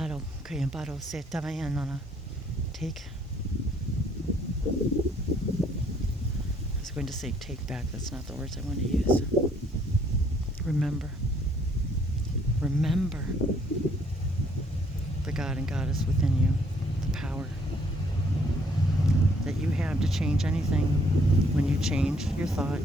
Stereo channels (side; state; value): both; normal; correlation 0.65